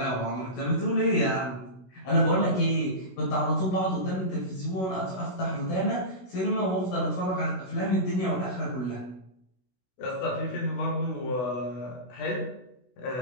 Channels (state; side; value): late; right; 16 ms